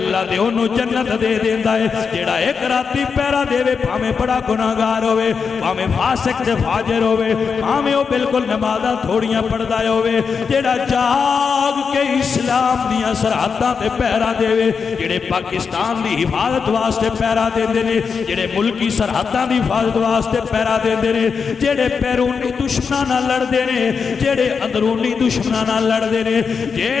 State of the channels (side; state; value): right; quieter; 5.8 dB